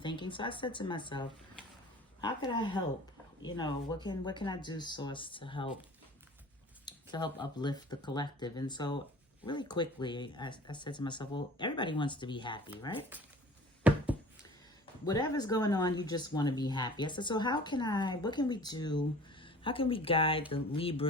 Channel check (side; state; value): both; normal; correlation 0.45